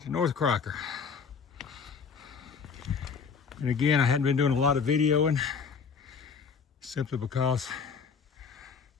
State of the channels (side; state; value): right; quieter; 5.9 dB